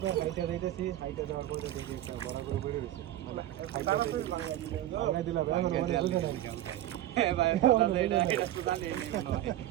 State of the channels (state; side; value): quieter; left; 13.5 dB